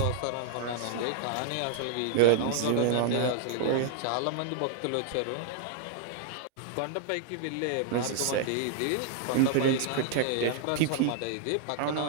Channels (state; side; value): different; both; correlation -0.01